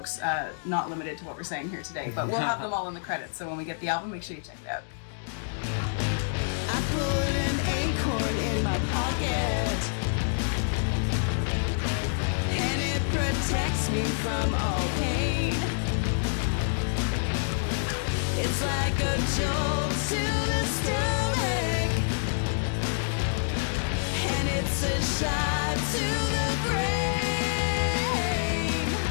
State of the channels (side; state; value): right; silent; digital silence